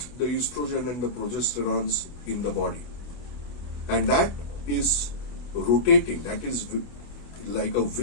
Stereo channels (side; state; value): right; late; 25 ms